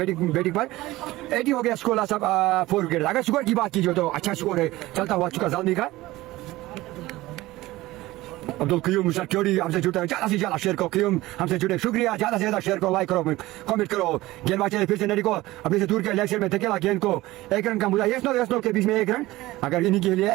बैटिंग पर। 80 हो गया स्कोर, सब 4 विकेट। अगर स्कोर की बात कीजिए तो अच्छा स्कोर है चलता हुआ चुका जालमी का। अब्दुल क्यूम सिक्योरिटी हमसे जुड़े, ज्यादा से ज्यादा शेयर करो, क्यूम हमसे जुड़े, शुक्रिया। ज्यादा से ज्यादा शेयर करो, लाइक करो, कमेंट करो। गेंदबाज चले फिर से, नडी को अपने से दूर के लेग साइड में धकेला, गेंद को 1 रन का मुजाहरा। यस नो के बीच में 1 रन। अगर इन्हीं के लिए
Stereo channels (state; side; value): quieter; left; 18.1 dB